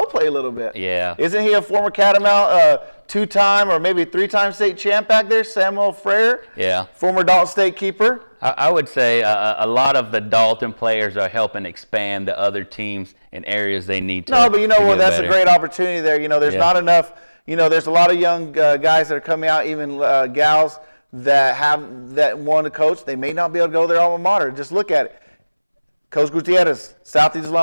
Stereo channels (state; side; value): inverted; both; correlation -1.00